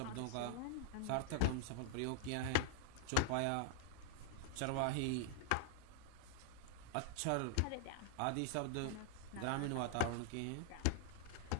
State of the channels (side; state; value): both; different; correlation 0.00